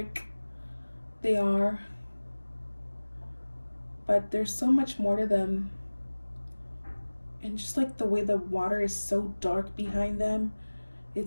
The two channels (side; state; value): both; inverted; correlation -1.00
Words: they are. But there's so much more to them. And just like the way the water is so dark behind them,